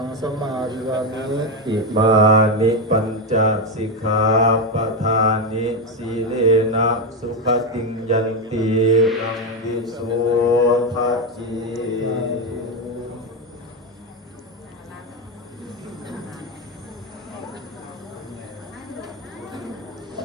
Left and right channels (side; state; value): both; normal; correlation 0.08